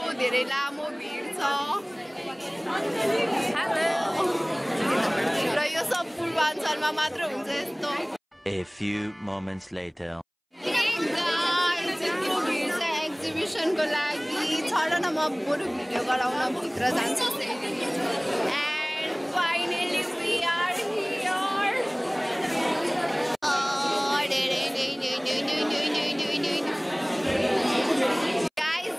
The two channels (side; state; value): both; identical; correlation 1.00